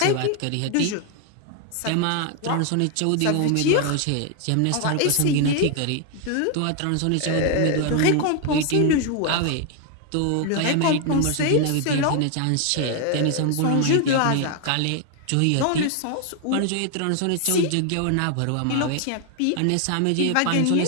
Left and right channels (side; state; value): both; different; correlation 0.01